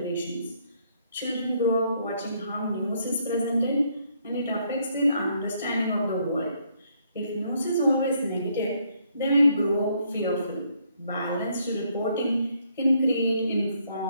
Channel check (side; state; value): both; inverted; correlation -0.70